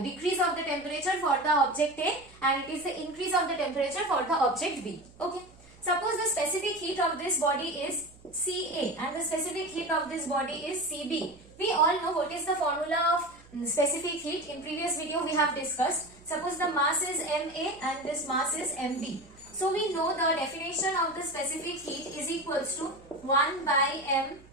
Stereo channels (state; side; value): noise; right; hum, 25 dB below the sound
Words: decrease of the temperature for the object A, and it is the increase of the temperature for the object B. Okay. Suppose the specific heat of this body is CA and the specific heat of this body is CB. We all know what is the formula of specific heat. In previous video we have discussed. Suppose the mass is MA and this mass is MB. So we know the definition of the specific heat is equals to 1 by